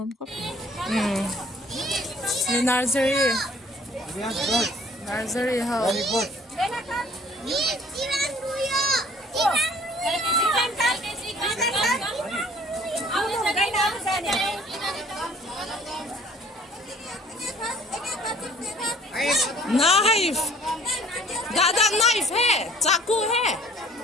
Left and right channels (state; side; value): normal; both; correlation 0.54